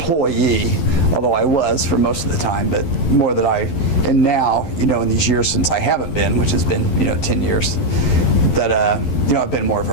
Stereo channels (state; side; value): late; right; 11 ms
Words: although I was for most of the time, but more that and now in these years since I haven't been, which has been 10 years, that I've been more of